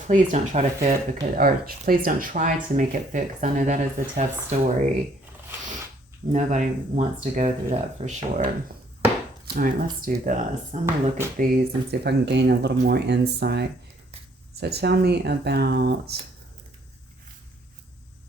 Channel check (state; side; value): normal; both; correlation 0.63